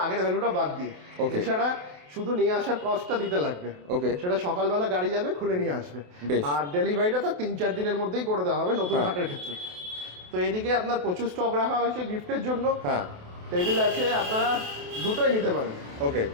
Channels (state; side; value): late; left; 28 ms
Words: আগের ভ্যালুটা বাদ দিয়ে। এছাড়া শুধু নিয়ে আসার কস্টটা দিতে লাগবে। ওকে, সেটা সকালবেলা গাড়ি যাবে, খুলে নিয়ে আসবে। বেশ। আর ডেলিভারিটা তো 3-4 দিনের মধ্যেই করে দেওয়া হবে নতুন খাটের ক্ষেত্রে। তো এদিকে আপনার প্রচুর স্টক রাখা হয়েছে গিফটের জন্য। হ্যাঁ, টেবিল আছে, আপনারা দুটোই নিতে পারেন, ওকে,